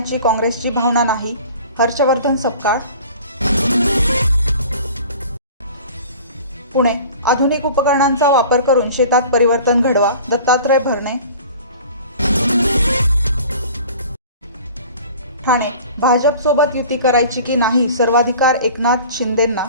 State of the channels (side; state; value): both; inverted; correlation -0.44